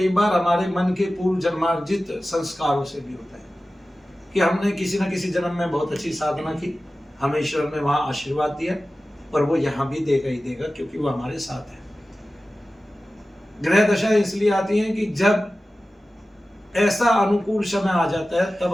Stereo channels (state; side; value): normal; both; correlation 0.95